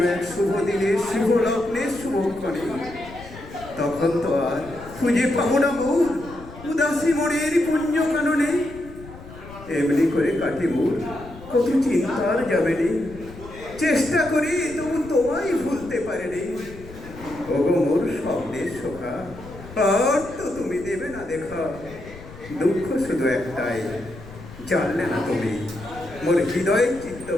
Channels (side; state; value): left; noise; rumble, 17 dB below the sound